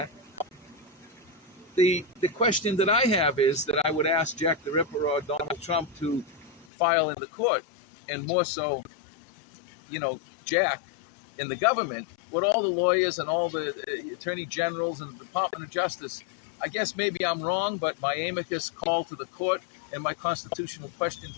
the question that I have is that I would ask Jack the Ripper or Donald Trump to file in the court, and more so, Jack in the government, with all the lawyers and all the attorney generals and the Department of Justice. I guess maybe I'm wrong, but my amicus call to the court and my constitutional question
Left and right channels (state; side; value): drops out; right; at 6.7 s